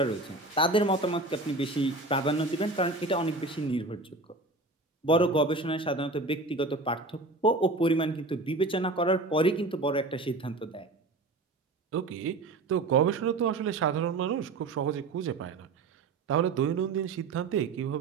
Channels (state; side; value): quieter; left; 3.2 dB